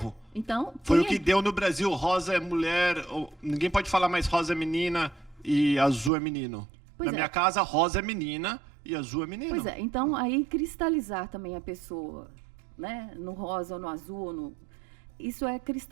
Então, Foi o quem que deu no Brasil, rosa é mulher, ninguém pode falar mais rosa é menina e azul é menino. Pois Na é. minha casa, rosa é menina e azul é menino. Pois é, então aí cristalizar também a pessoa, né, no rosa ou no azul, isso é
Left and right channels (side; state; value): left; drops out; at 6.1 s